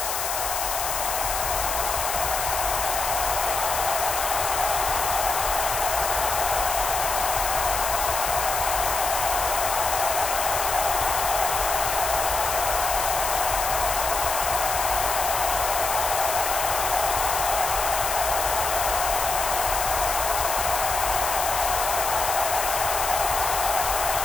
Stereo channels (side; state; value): left; noise; hiss, 2 dB below the sound